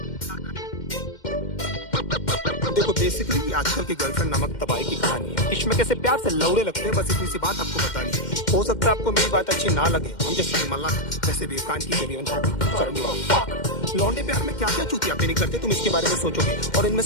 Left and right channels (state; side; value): late; right; 2.1 ms